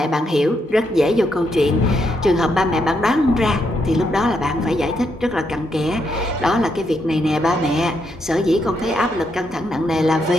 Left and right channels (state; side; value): normal; both; correlation 0.79